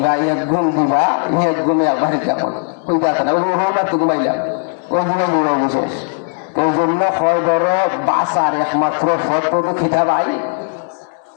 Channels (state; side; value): silent; right; digital silence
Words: এক ঘুম দিবা, এক ঘুমে আবার কেমন ওই কথা না, ওই মাত্র ঘুমাইলাম, ওই ঘুমাই ঘুমাই বিশেষ। এই জন্য হয় ধর বাসার একমাত্র ফটো তো খিতা ভাই